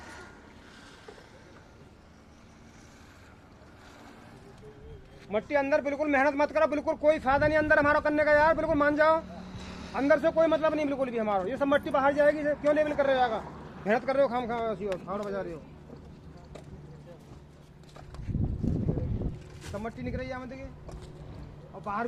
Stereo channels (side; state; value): both; identical; correlation 1.00